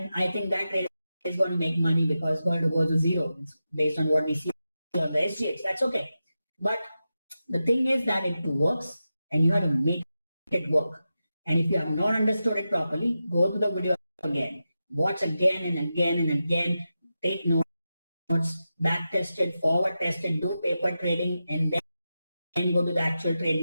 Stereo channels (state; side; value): inverted; both; correlation -0.90